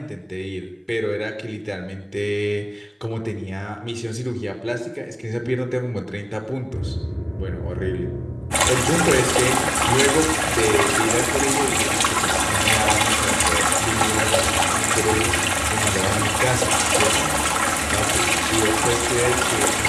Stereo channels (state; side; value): identical; both; correlation 1.00